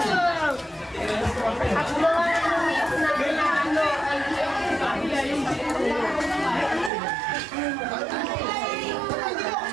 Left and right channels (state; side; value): drops out; left; at 6.9 s